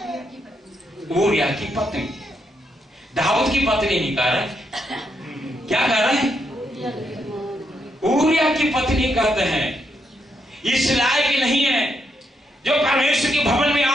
ऊरिया की पत्नी, दाऊद की पत्नी नहीं कह रहे, क्या कह रहे हैं? ऊरिया की पत्नी कहते हैं। इस लायक नहीं है जो परमेश्वर के भवन में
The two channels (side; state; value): both; normal; correlation 0.79